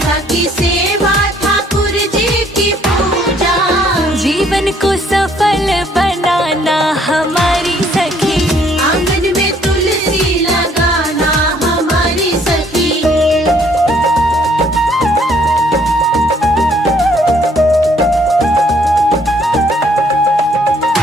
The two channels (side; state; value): both; normal; correlation 0.64